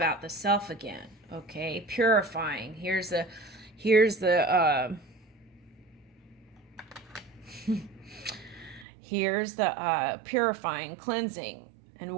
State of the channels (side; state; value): left; drops out; at 8.8 s